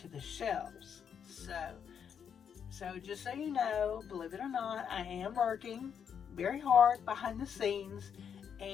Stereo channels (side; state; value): right; quieter; 7.7 dB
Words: the shelves. So just so you know, believe it or not, I am working very hard behind the scenes.